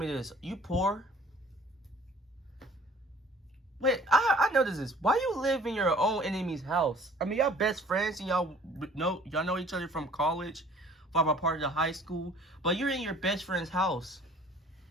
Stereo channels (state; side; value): normal; both; correlation 0.52